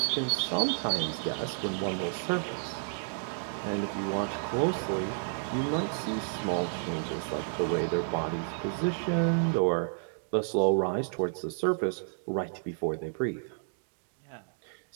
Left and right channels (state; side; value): silent; left; digital silence